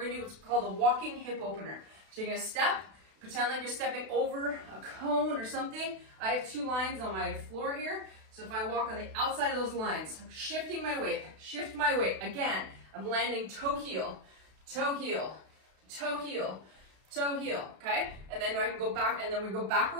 do what's called a walking hip opener. So you're gonna step, pretend like you're stepping over a cone or something. I have 2 lines on my floor here. So if I walk on the outside of those lines, I'm shifting my weight, shift my weight. Again, I'm landing toe heel, toe heel, toe heel, toe heel, okay? And then I can go back, and then we go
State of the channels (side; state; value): left; late; 32 ms